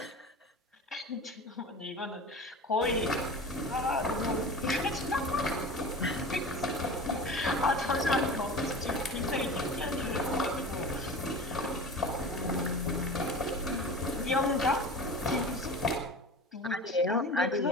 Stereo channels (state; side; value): normal; both; correlation 0.34